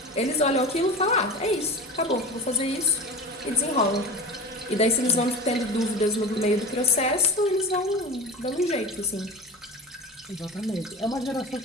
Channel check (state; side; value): normal; both; correlation 0.31